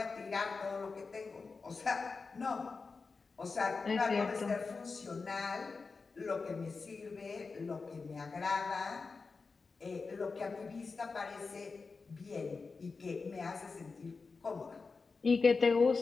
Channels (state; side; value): quieter; right; 4.4 dB